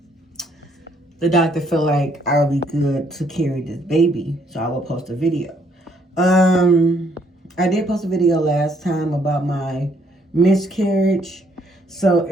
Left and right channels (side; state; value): both; normal; correlation 0.68